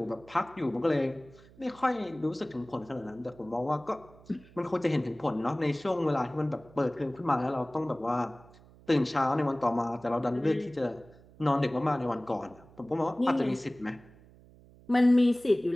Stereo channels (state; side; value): noise; right; hum, 24 dB below the sound